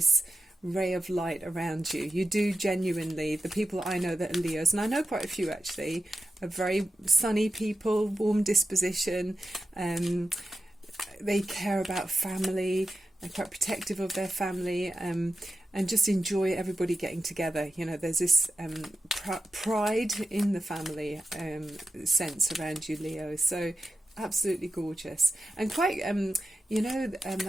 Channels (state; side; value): normal; both; correlation 0.91